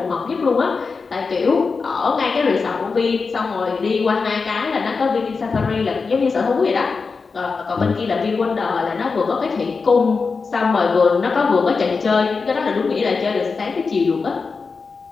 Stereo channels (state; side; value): quieter; right; 4.7 dB